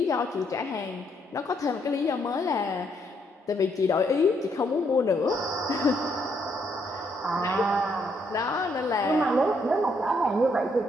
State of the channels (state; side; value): normal; both; correlation 0.73